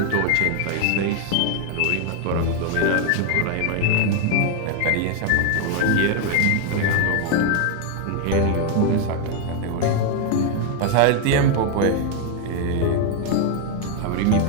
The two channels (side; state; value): both; different; correlation 0.01